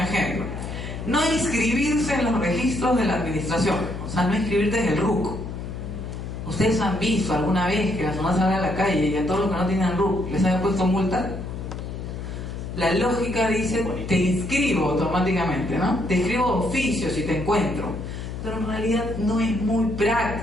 No inscribirse en los registros de la administración, o sea, no inscribirte en el RUC. ¿Ustedes han visto alguna vez que la zona salga a la calle y a todos los que no tienen RUC les haya puesto multa? La lógica dice, te inscribo automáticamente, ¿no? Te inscribo oficio si te encuentro. Pero en realidad no es muy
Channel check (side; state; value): left; noise; hum, 7 dB below the sound